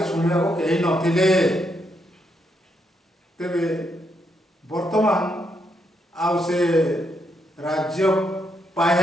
सुनिया को कहीं नथिले। तेबे वर्तमान आउ से राज्य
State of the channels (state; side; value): normal; both; correlation 0.78